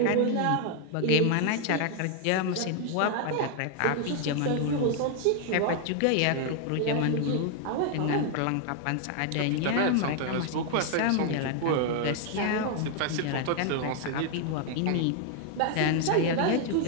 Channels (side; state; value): both; different; correlation 0.00